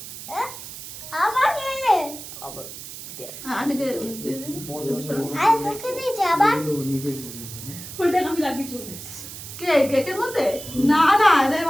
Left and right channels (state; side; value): noise; right; hiss, 12 dB below the sound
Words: কেকের মধ্যে না না